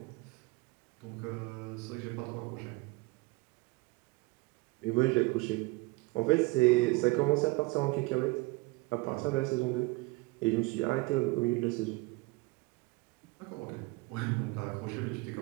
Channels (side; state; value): left; quieter; 23.8 dB